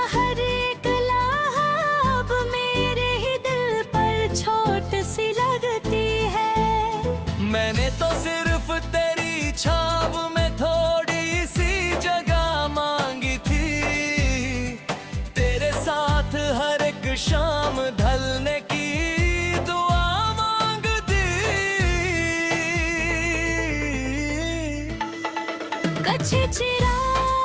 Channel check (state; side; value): identical; both; correlation 1.00